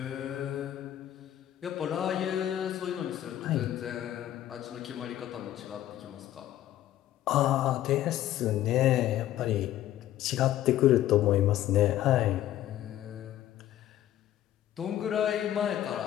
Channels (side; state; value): right; quieter; 12.8 dB